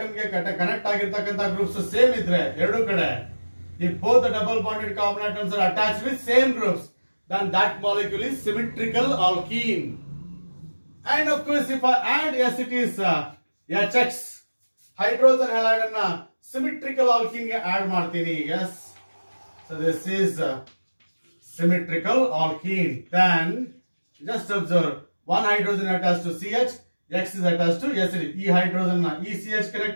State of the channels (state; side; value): inverted; both; correlation -1.00